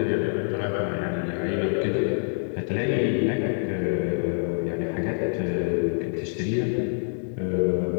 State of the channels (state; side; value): silent; right; digital silence